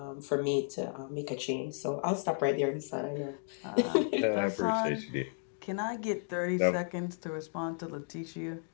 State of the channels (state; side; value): silent; right; digital silence